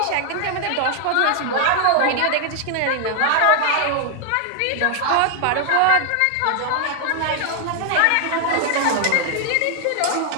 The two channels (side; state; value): both; different; correlation 0.00